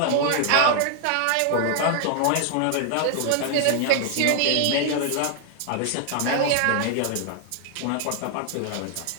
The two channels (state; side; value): different; both; correlation 0.00